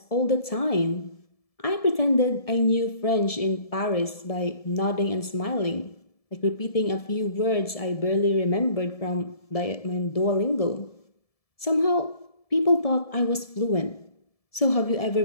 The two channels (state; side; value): late; right; 1.7 ms